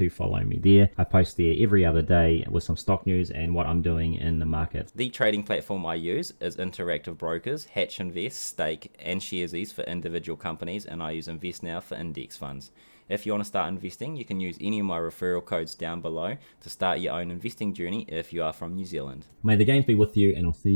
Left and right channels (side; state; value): both; inverted; correlation -1.00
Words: follow me there. I post there every other day with some stock news and what I'm doing in the market. The trading platform I use is Interactive Brokers, Hatch Invest, Stake, and Sharesies for individual companies, and I use Investnow for index funds. If you want to start investing, you can use any of my referral codes down below to start your own investing journey if you are from New Zealand. May the gains be with you, and I'll see